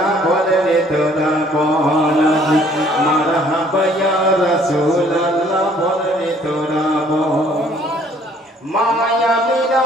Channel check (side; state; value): both; normal; correlation 0.59